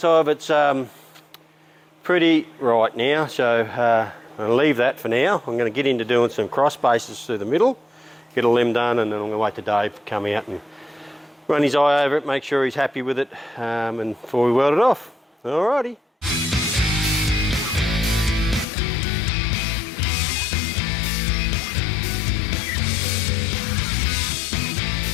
of it's pretty right now, so I'll leave that for now. I'm going to get into doing some cross bases through the middle, get all them done, and then I'm going to wait till Dave to come out and run his eye over it, make sure he's happy with it, and before we weld it off. Alrighty.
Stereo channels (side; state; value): right; drops out; at 18.7 s